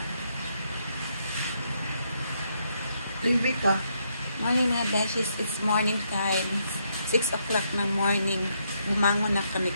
Baby pa. Morning mga beshies. It's morning time. 6 o'clock ng morning. Bumangon na kami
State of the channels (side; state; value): both; inverted; correlation -0.76